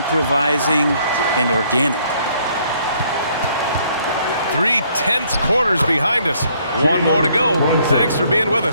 and organic. 3 tense quarters behind us. One more to go. Thanks for being with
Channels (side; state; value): both; inverted; correlation -0.66